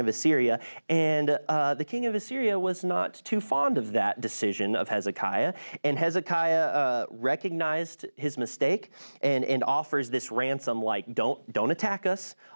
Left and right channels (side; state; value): both; inverted; correlation -1.00